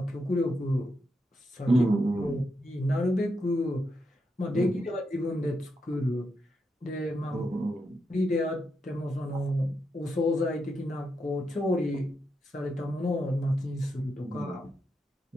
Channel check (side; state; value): both; normal; correlation 0.83